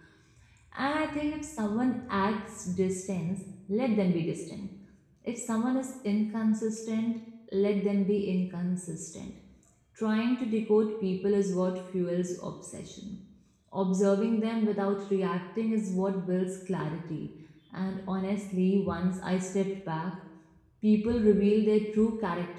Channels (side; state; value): both; identical; correlation 1.00